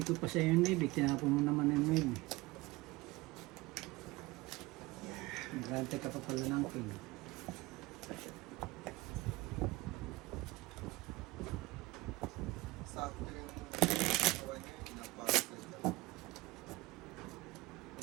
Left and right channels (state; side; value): quieter; left; 21.2 dB